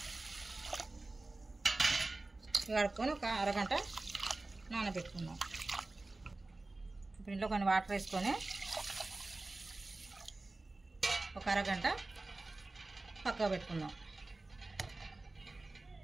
ఒక అరగంట నానబెట్టుకుందాం. ఇప్పుడు ఇంట్లో కొన్ని వాటర్ వేసుకొని ఒక అరగంట పక్కకు పెట్టుకుందాం.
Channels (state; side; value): quieter; left; 3.1 dB